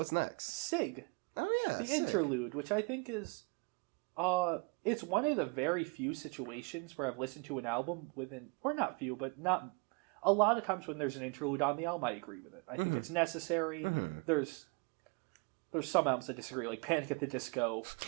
next? Sig. Oh, yeah. The interlude, which I think is... it's one of the very few situations where I've listened to an album or not few, but not... A lot of times when there's an interlude on the album, I agree with it. I think it's necessary. There's some albums I disagree, like Panic at the Disco.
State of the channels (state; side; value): quieter; left; 32.9 dB